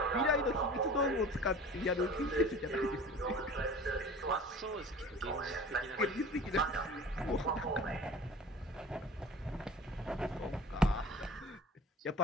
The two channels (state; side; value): normal; both; correlation 0.42